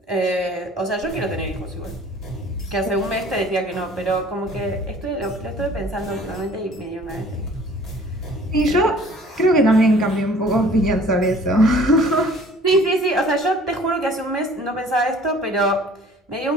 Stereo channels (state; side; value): normal; both; correlation 0.51